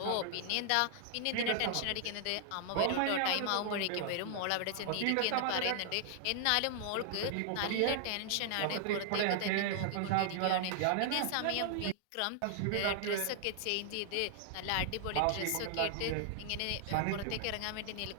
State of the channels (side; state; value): both; different; correlation -0.01